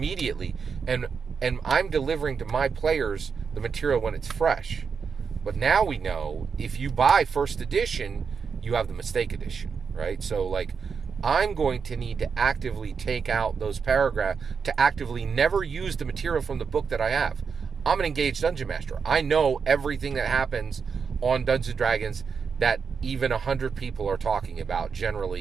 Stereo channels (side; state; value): left; quieter; 5.9 dB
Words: and I'm delivering to my players the material when it's fresh. But now we know if you buy first edition, you have the mistake edition, right? So I'm going to need to actively take out those paragraphs, to actively never use the material from the book that I have. I'm an engaged dungeon master. I know everything that happens on Dungeons & Dragons that even 100 people are talking about